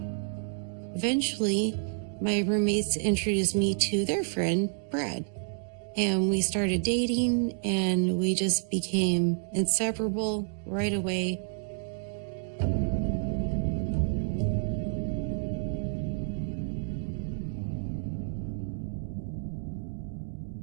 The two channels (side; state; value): left; silent; digital silence